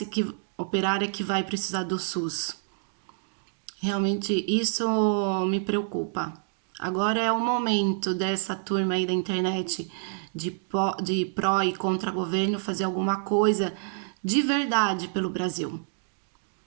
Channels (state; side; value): silent; left; digital silence